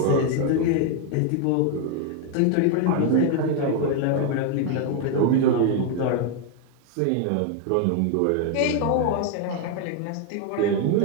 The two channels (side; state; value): both; different; correlation 0.01